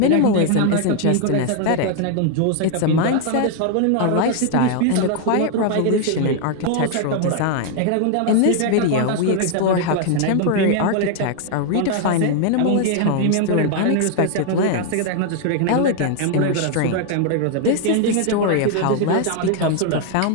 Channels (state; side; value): different; both; correlation 0.00